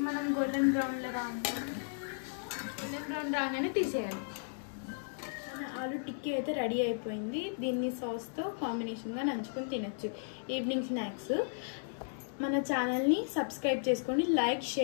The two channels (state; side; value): silent; right; digital silence